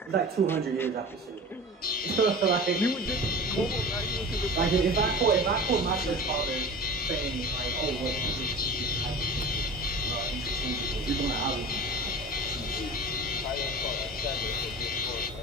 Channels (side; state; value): both; normal; correlation 0.36